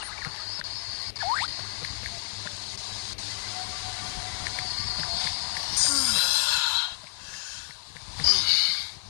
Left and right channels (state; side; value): silent; right; digital silence